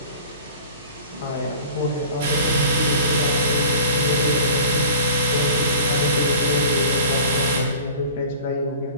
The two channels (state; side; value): inverted; both; correlation -0.42